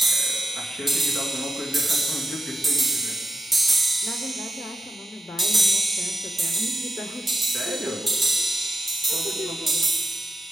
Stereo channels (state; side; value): normal; both; correlation 0.86